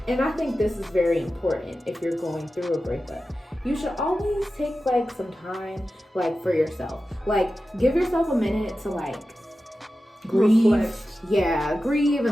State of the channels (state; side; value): normal; both; correlation 0.93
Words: and I think this is very important if you're going through a breakup, you should always take like some time like for yourself. Like give yourself a minute to like grieve. Reflect. Yeah, grieve